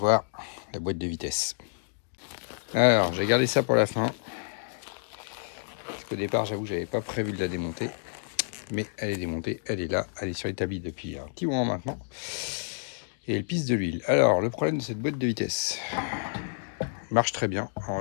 la boîte de vitesse. Alors, j'ai gardé ça pour la fin, parce qu'au départ, j'avoue, j'avais pas prévu de la démonter, mais elle est démontée, elle est là, elle est sur l'établi depuis un petit moment maintenant, et elle pisse de l'huile. Alors, le problème de cette boîte de vitesse marche très bien, en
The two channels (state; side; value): silent; right; digital silence